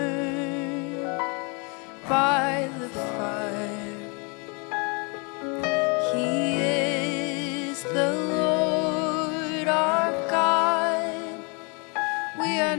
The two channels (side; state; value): right; quieter; 32.9 dB